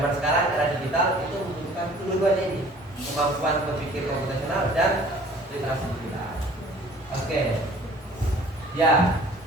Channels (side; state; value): both; normal; correlation 0.51